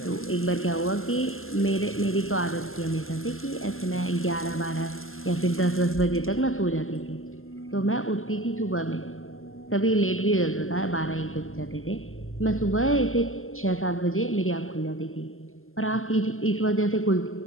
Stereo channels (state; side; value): late; right; 0.61 ms